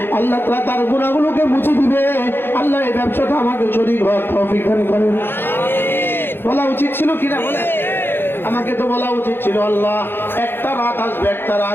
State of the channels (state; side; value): late; right; 0.10 ms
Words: আল্লাহ তাআলা তার গুনাহগুলোকে মুছে দিবে। আল্লাহ এই ব্যবসাটা আমাকে শরীক হওয়ার তৌফিক দান করেন। বলা উচিত ছিল কিনা বলে? আমাকে তো বলা উচিত ছিল আল্লাহ একটা রাত আসবে, একটা